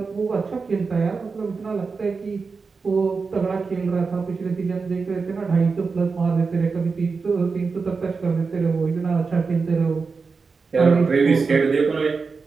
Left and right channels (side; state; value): left; quieter; 4.7 dB